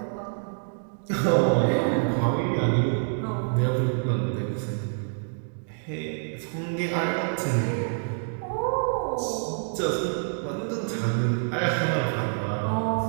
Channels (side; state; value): left; silent; 60 dB below the other